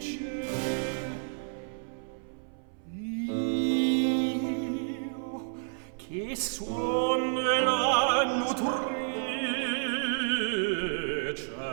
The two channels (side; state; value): left; silent; 58 dB below the other